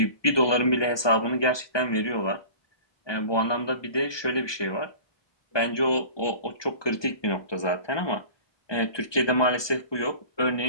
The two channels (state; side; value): late; right; 1.2 ms